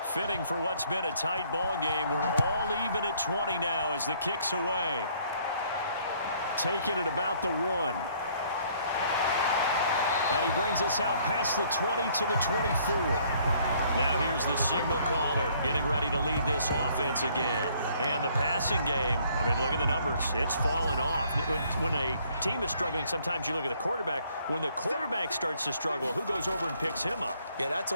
Fitting for what's been a tight ball game. We're all even at 20 now as the kick's away. Taking it about the 1. And he brings us out past the 20 to the 24. Now here's the signal caller getting ready to lead this offense again. And the passing game, I mean, look at the numbers. It's fallen off. When a team is struggling, sometimes you look at the quarterback. When the quarterback starts to struggle, who goes over and picks him up? Yeah, that's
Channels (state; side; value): inverted; both; correlation -0.63